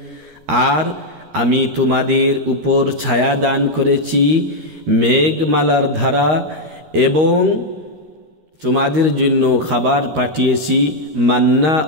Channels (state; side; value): late; left; 13 ms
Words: আর আমি তোমাদের উপর ছায়া দান করেছি, মেঘমালার ধারা, এবং তোমাদের জন্য খাবার পাঠিয়েছি মান্না